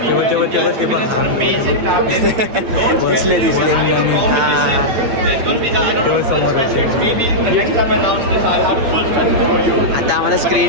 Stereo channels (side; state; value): left; late; 8.8 ms